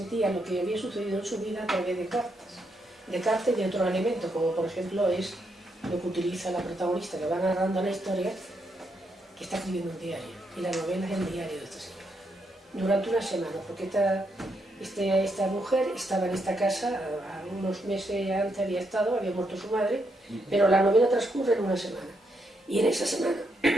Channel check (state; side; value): normal; both; correlation 0.79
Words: lo que había sucedido en su vida a través de cartas y de otros elementos, como por ejemplo es lo que utiliza la protagonista que va narrando la historia, que está escribiendo un diario, y la novela es el diario de esta señora. Durante una semana, porque esta mujer estaba en esta casa, unos meses antes había muerto su madre, pero la novela transcurre en una semana. Y en esa semana,